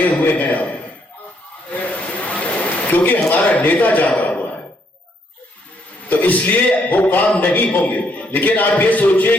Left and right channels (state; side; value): normal; both; correlation 0.72